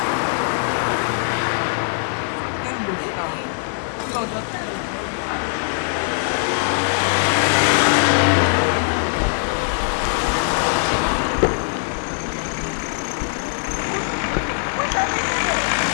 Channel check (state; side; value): silent; right; 61 dB below the other